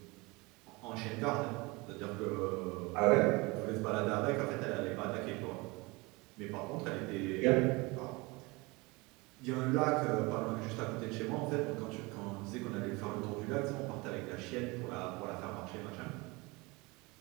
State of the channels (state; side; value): quieter; left; 24.9 dB